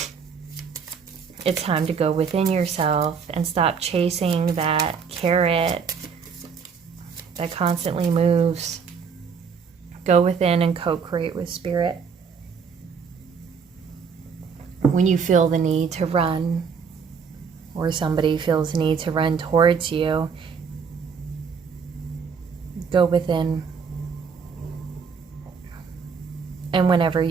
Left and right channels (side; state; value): left; quieter; 6.0 dB